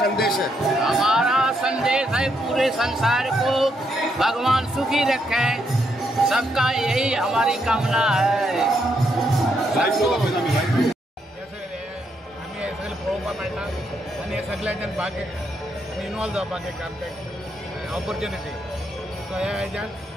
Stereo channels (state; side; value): normal; both; correlation 0.77